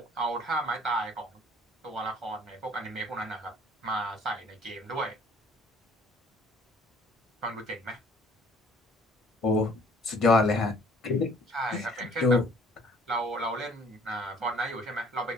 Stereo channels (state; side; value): normal; both; correlation 0.55